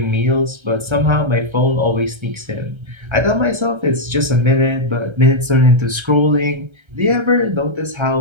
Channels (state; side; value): late; left; 1.3 ms